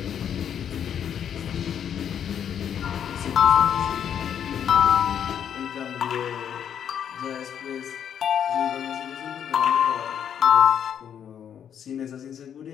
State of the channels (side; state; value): right; quieter; 8.8 dB